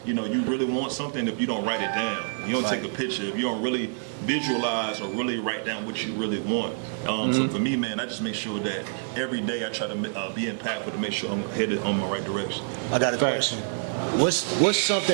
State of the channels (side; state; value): left; silent; digital silence